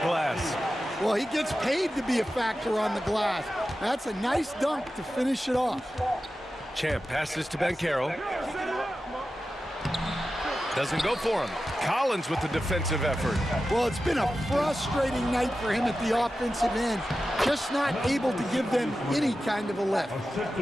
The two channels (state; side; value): normal; both; correlation 0.93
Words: Well, he gets paid to be a factor on the glass. That's a nice dunk to finish it off. Champ passes to Banchero. Doesn't go for him. Collins with the defensive effort. Well, it's been a frustrating night for him at the offensive end. Just not able to give them any kind of a lift.